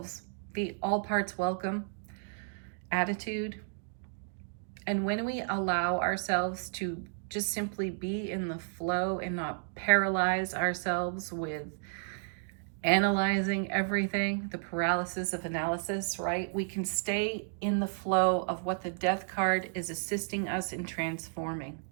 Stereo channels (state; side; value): silent; left; digital silence